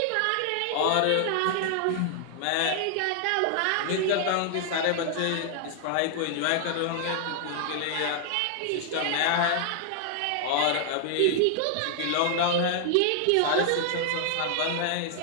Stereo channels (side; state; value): both; different; correlation 0.00